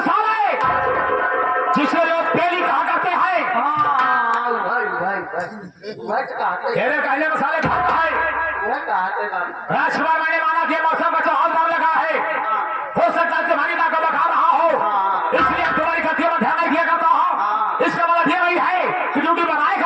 जिसे लोग पेली कहा करते हैं। तेरे कहने में साले भाग है राजकुमार मैंने माना कि मौसम का चौहान नाम लगा है हो सकता है तुम्हारी माँ को बखा रहा हो इसलिए तुम्हारी गतियों में ध्यान नहीं दिया करता हूँ। इसका मतलब ये नहीं है कि ड्यूटी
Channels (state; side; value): identical; both; correlation 1.00